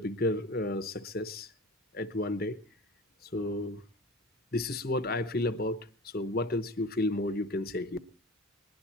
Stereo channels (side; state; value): both; normal; correlation 0.36